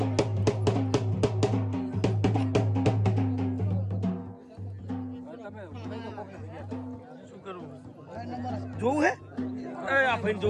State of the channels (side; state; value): both; identical; correlation 1.00